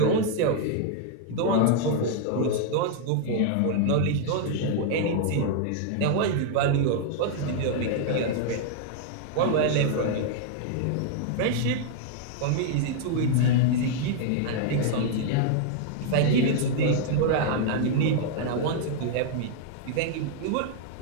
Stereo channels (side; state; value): both; different; correlation 0.00